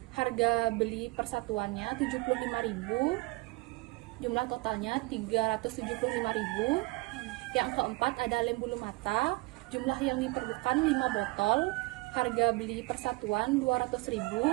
harga beli persatuannya 75.000, jumlah totalnya 375.000. Yang keempat ada lem bulu mata, jumlah yang diperlukan 5 botol, harga beli persatuan 200.000,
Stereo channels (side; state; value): left; quieter; 24.2 dB